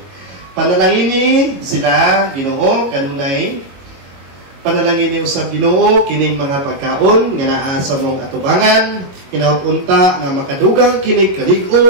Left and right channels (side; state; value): left; late; 22 ms